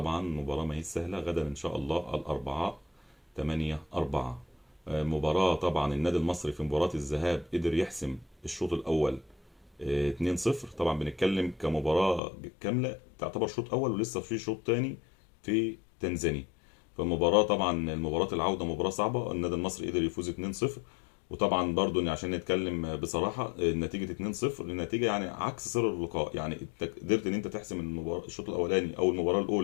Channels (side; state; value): right; drops out; at 12.2 s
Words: مباراة ما هي سهلة. غدا إن شاء الله الأربعاء 8/4. مباراة طبعا النادي المصري في مباراة الذهاب قدر يحسم الشوط الأول 2-0. طبعا بنتكلم كمباراة كاملة تعتبر شوط أول، ولسه في شوط تاني في تنزانيا. فالمباراة طبعا المباراة العودة مباراة صعبة. النادي المصري قدر يفوز 2-0. وطبعا برضو عشان نتكلم بصراحة، النتيجة 2-0 النتيجة يعني عكس سير اللقاء. يعني انت قدرت ان انت تحسم المباراة الشوط الاولاني او المباراة